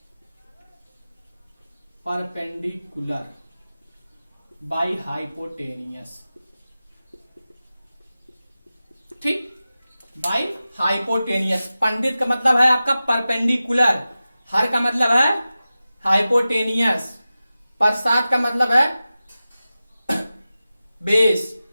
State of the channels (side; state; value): both; inverted; correlation -0.95